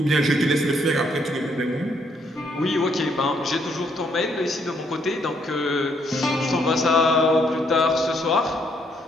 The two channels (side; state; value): both; normal; correlation 0.71